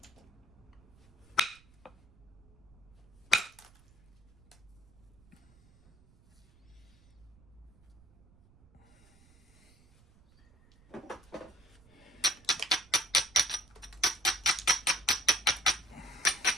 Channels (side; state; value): right; noise; rumble, 27 dB below the sound